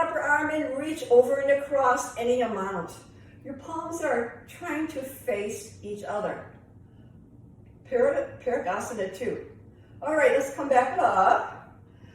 arm and reach over and across any amount. Your palms are trying to face each other. Parigasana 2. All right, let's come back up.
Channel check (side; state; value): both; identical; correlation 1.00